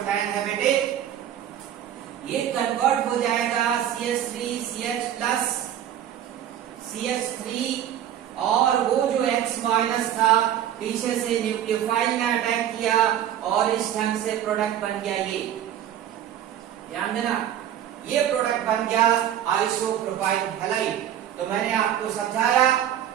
है बेटे, ये कन्वर्ट हो जाएगा CH3CH प्लस CH3 और वो जो X माइनस था पीछे से न्यूक्लियोफाइल ने अटैक किया और इस ढंग से प्रोडक्ट बन गया। ये ध्यान देना, ये प्रोडक्ट बन गया आइसोप्रोपाइल हैलाइड। तो मैंने आपको समझाया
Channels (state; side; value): quieter; left; 10.7 dB